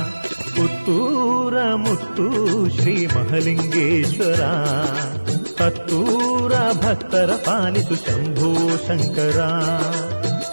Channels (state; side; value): inverted; both; correlation -1.00